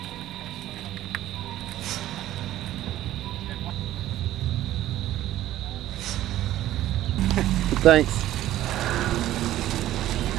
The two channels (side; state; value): left; quieter; 13.9 dB